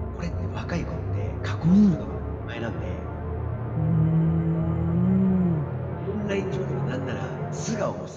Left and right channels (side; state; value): both; identical; correlation 1.00